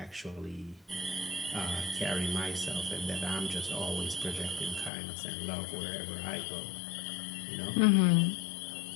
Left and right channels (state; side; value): drops out; right; at 4.9 s